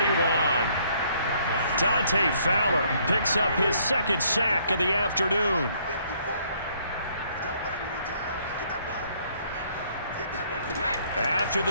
Dante Fowler picks up his 2nd sack of the afternoon. After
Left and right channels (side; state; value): both; inverted; correlation -0.65